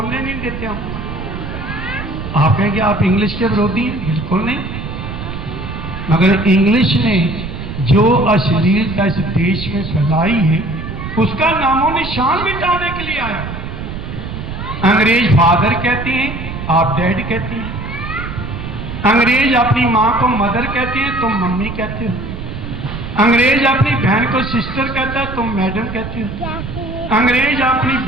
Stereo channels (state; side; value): noise; right; rumble, 8 dB below the sound